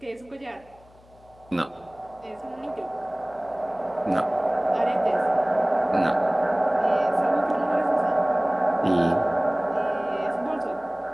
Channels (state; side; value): noise; left; hum, 27 dB below the sound